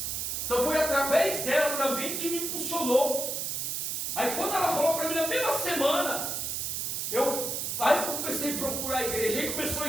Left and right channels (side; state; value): right; noise; hiss, 2 dB below the sound